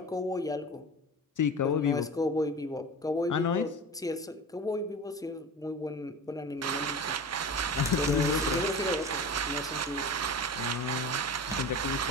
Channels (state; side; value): normal; both; correlation 0.32